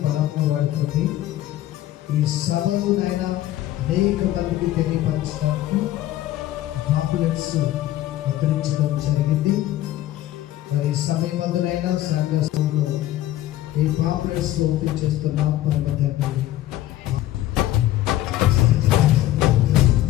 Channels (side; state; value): right; quieter; 14.2 dB